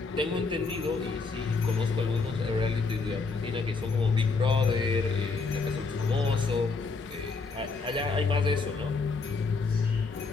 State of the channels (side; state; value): right; quieter; 4.3 dB